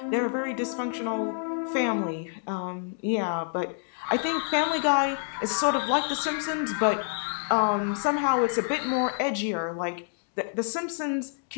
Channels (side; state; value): right; silent; digital silence